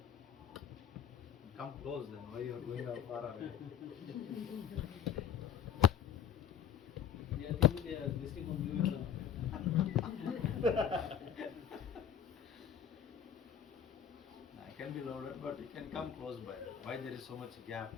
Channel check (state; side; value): quieter; right; 8.7 dB